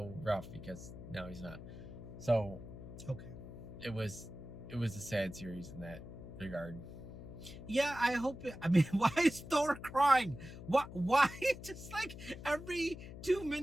rough because now he's not. So, okay, it was a sad series in that regard. Yeah, I hope it. I mean, why is Thor crying? Why? Just like every 2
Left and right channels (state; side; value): noise; left; hum, 12 dB below the sound